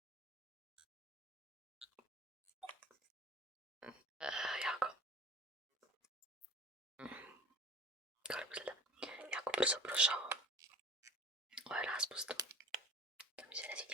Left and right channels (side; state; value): both; normal; correlation 0.43